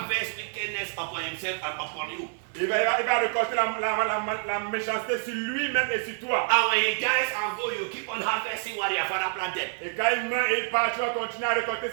wickedness upon himself and upon you. il va récolter la méchanceté sur lui-même et sur toi. And when he dies and go, you keep on harvesting what your father planted. Et quand il meurt et il part, tu vas continuer à récolter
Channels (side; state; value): left; silent; digital silence